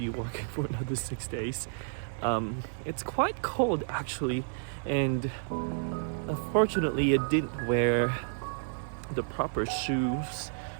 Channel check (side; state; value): left; silent; digital silence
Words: working for another 6 days. It's quite cold actually, and unfortunately I didn't wear the proper shoes